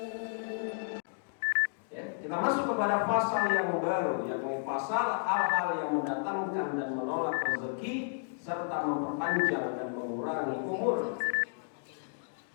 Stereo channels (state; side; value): silent; right; digital silence